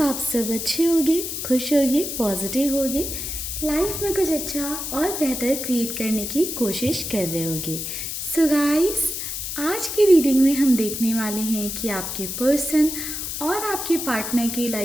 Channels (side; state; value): left; noise; hiss, 5 dB below the sound